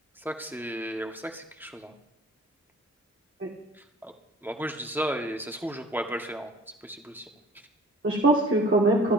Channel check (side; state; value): both; normal; correlation 0.48